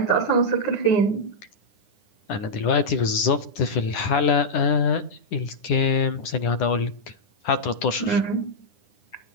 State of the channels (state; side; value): late; right; 9.9 ms